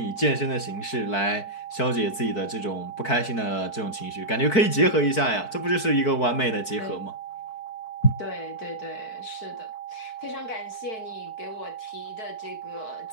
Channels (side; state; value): right; late; 4.6 ms